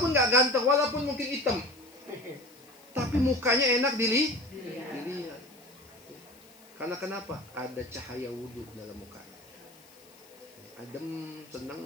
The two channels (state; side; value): noise; left; hiss, 25 dB below the sound